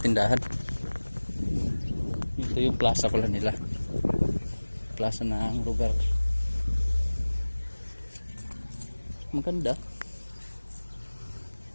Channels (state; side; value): inverted; both; correlation -1.00